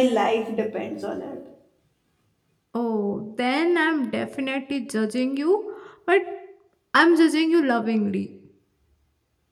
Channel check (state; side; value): identical; both; correlation 1.00